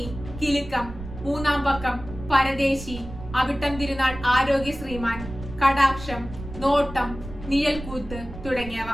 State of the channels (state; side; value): noise; right; rumble, 12 dB below the sound